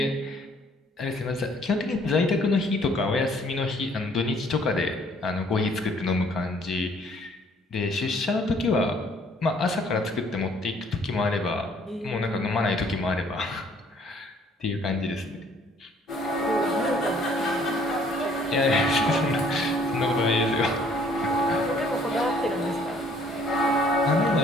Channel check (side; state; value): both; normal; correlation 0.61